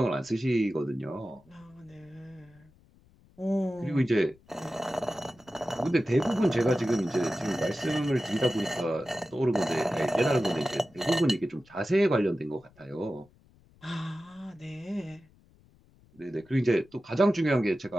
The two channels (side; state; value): left; noise; rumble, 29 dB below the sound